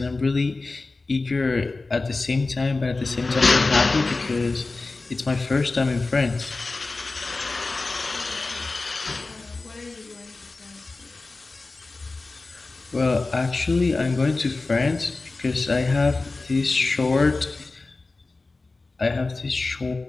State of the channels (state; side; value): quieter; right; 3.5 dB